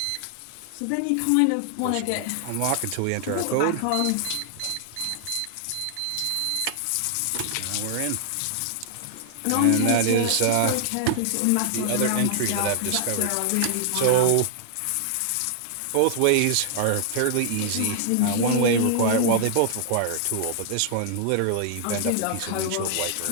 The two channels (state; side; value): different; both; correlation -0.01